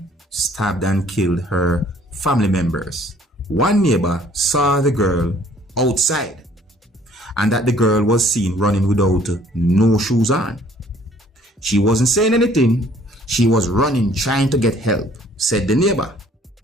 stabbed and killed her family members. One neighbor saw the girl outside and that the girl was seen running without no shoes on. She wasn't saying anything. She was running trying to get help, said the neighbor.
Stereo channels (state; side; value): normal; both; correlation 0.58